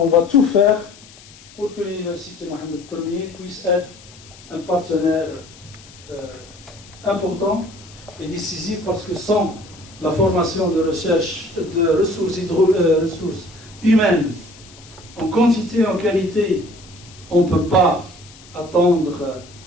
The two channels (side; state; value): left; noise; hiss, 22 dB below the sound